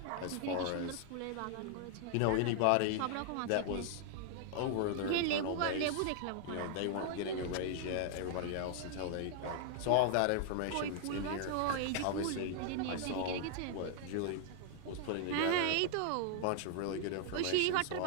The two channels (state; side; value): different; both; correlation 0.00